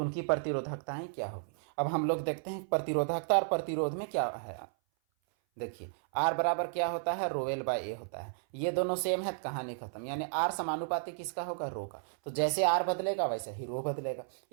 उनकी प्रतिरोधकताएं क्या होगी। अब हम लोग देखते हैं प्रतिरोधकता और प्रतिरोध में क्या है। देखिए आर बराबर क्या होता है, रोएल बाय ए होता है। ये दोनों सेम है, कहानी खत्म, यानी आर समानुपाती किसका होगा, रो का। तो जैसे आर बदलेगा वैसे ही रो बदलेगा।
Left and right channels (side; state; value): left; silent; 56 dB below the other